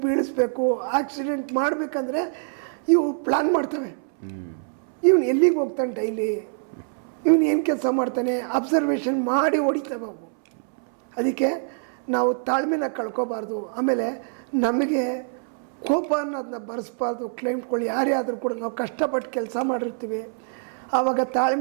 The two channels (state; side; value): silent; left; 62 dB below the other